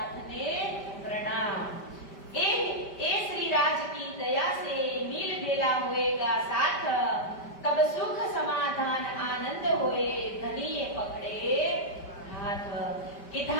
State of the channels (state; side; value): late; right; 5.1 ms